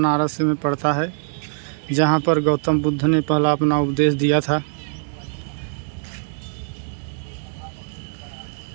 में पड़ता है, जहाँ पर गौतम बुद्ध ने पहला अपना उपदेश दिया था।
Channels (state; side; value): silent; left; digital silence